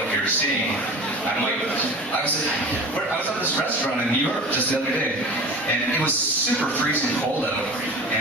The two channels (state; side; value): normal; both; correlation 0.36